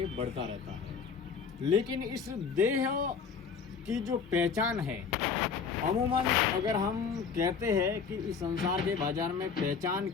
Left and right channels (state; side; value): quieter; right; 5.9 dB